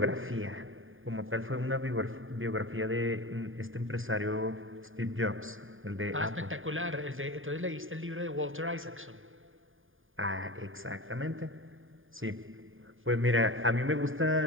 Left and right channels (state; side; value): late; left; 0.59 ms